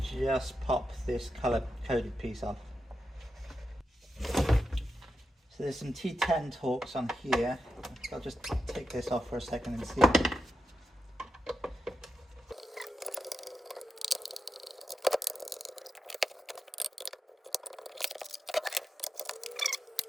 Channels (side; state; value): both; normal; correlation 0.87